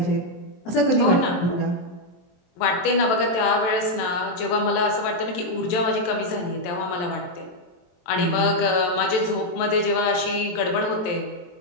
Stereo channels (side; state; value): right; late; 23 ms